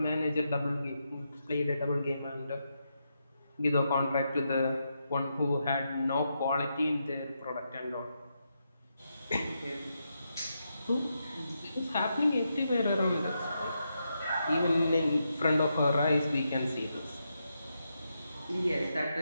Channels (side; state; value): both; inverted; correlation -0.84